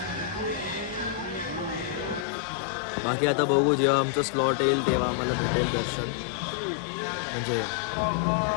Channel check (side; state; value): right; drops out; at 2.2 s